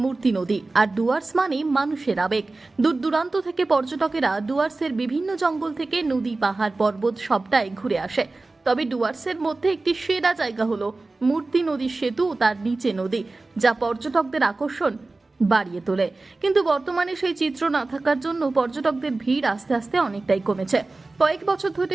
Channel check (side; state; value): left; quieter; 3.3 dB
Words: মূর্তি নদী, আর ডুয়ার্স মানে মানুষের আবেগ। দূর দূরান্ত থেকে পর্যটকেরা ডুয়ার্সের বিভিন্ন জঙ্গল থেকে নদী, পাহাড়, পর্বত সবটাই ঘুরে আসে। তবে ডুয়ার্সের মধ্যে একটি সেরা জায়গা হলো মূর্তি নদীর সেতু ও তার নিচে নদী, যা পর্যটকদের আকর্ষণ বাড়িয়ে তোলে। কিন্তু বর্তমানে সেই চিত্র না থাকার জন্য পর্যটকদের ভিড় আস্তে আস্তে অনেকটাই কমেছে। কয়েক বছর